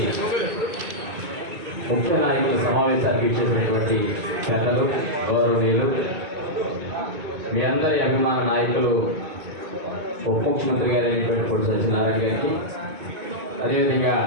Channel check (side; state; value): left; late; 2.2 ms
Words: ముఖ్య నాయకుల సమావేశానికి ఇచ్చేసినటువంటి పెద్దలు, గౌరవనీయులు, మీ అందరి అభిమాన నాయకులు ఉప ముఖ్యమంత్రి గారు అయినటువంటి పొట్టి సత్యనారాయణ గారికి, అదేవిధంగా